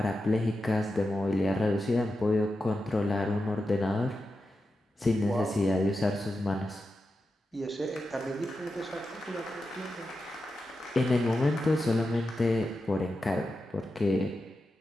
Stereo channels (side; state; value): both; normal; correlation 0.90